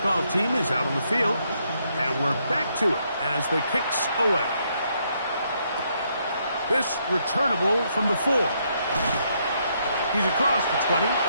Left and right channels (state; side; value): inverted; both; correlation -0.74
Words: team is out on the field, and we're back to it as the kick's away. This returnable from the 4. He's across the 20,